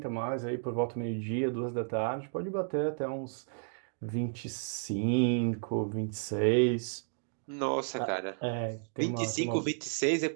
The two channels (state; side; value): silent; left; digital silence